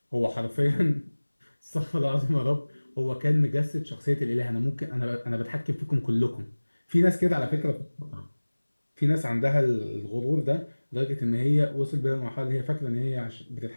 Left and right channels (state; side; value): inverted; both; correlation -1.00